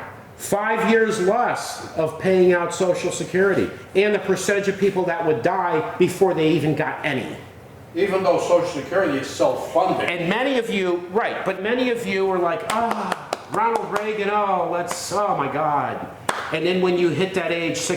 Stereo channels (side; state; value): both; identical; correlation 1.00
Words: 5 years less of paying out Social Security, and the percentage of people that would die before they even got any. Even though Social Security is self-funding. And many of you, right, but many of you were like, Ronald Reagan, oh my God. And then when you hit that age,